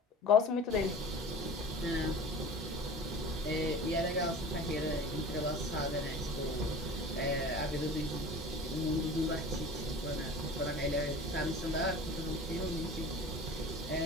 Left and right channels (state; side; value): normal; both; correlation 0.39